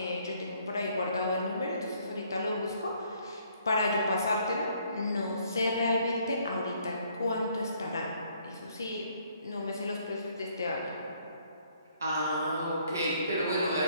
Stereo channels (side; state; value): both; inverted; correlation -0.65